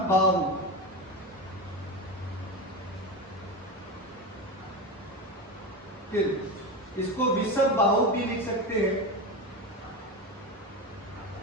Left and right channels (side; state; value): both; normal; correlation 0.21